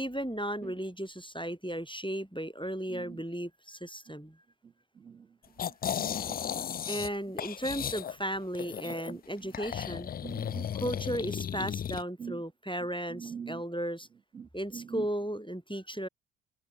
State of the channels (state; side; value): normal; both; correlation 0.50